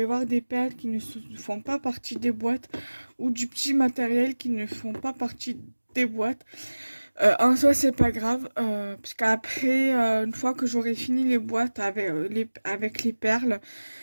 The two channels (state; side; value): inverted; both; correlation -1.00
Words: voir des perles qui ne font pas partie des boîtes ou du petit matériel qui ne font pas partie des boîtes. En soi, c'est pas grave, parce qu'après, une fois que j'aurai fini les boîtes avec les perles,